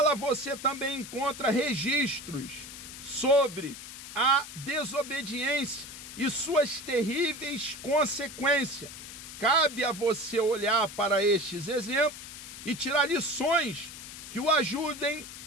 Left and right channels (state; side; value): noise; left; hiss, 12 dB below the sound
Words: você também encontra registros sobre a desobediência e suas terríveis consequências. Cabe a você olhar para estes exemplos e tirar lições que o ajudem